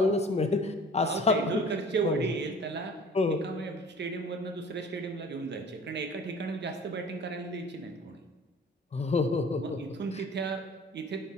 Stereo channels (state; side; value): normal; both; correlation 0.46